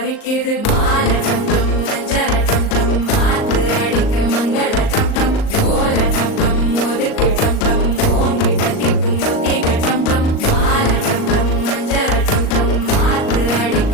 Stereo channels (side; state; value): right; late; 38 ms